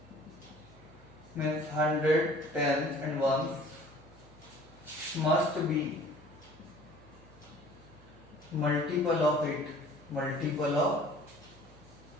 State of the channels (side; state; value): right; noise; hum, 23 dB below the sound